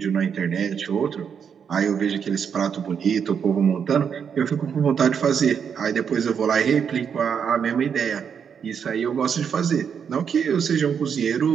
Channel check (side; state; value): left; quieter; 7.2 dB